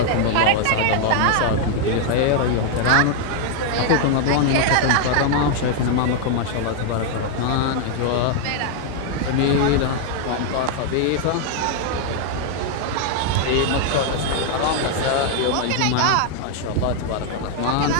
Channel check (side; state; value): both; different; correlation 0.00